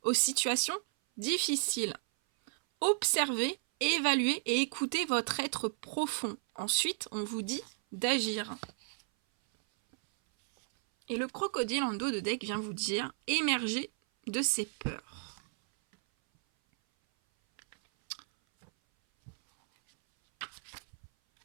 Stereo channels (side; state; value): left; silent; 56 dB below the other